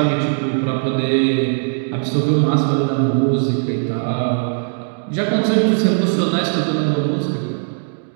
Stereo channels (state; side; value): silent; left; digital silence